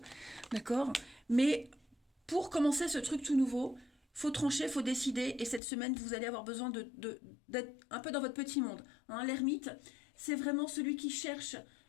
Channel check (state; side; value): drops out; right; at 5.6 s